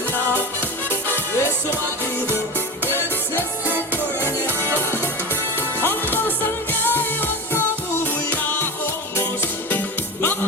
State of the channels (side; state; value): both; normal; correlation 0.25